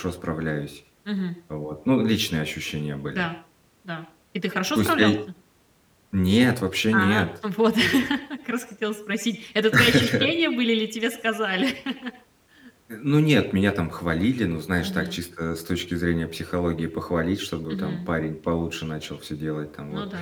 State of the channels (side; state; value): both; identical; correlation 1.00